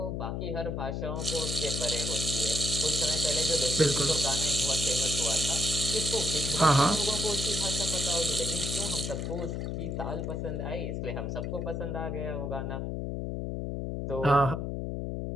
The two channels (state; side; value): noise; left; hum, 3 dB below the sound